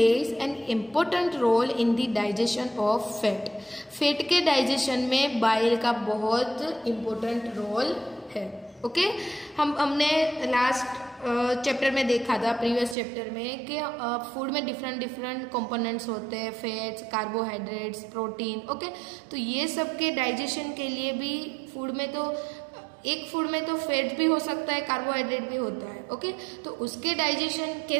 an important role in the digestion of fat. Fat के डाइजेशन में बाइल का बहुत इम्पोर्टेंट रोल है. ओके हमने लास्ट चैप्टर में देखा था, प्रीवियस चैप्टर में, कि फूड में डिफरेंट कंपोनेंट्स होते हैं, फैट्स, कार्बोहाइड्रेट्स, प्रोटीन. ओके तो ये सब के डाइजेशन के लिए भी फूड में तो एक फूड में तो फैट भी हो सकता है, कार्बोहाइड्रेट भी होता है. ओके तो उसके डाइजेशन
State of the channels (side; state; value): left; drops out; at 13.0 s